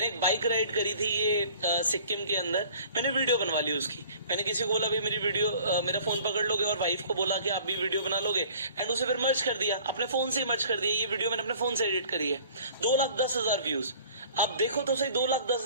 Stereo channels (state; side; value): inverted; both; correlation -0.50